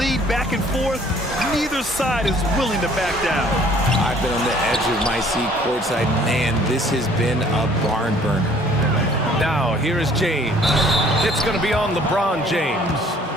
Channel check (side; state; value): both; normal; correlation 0.57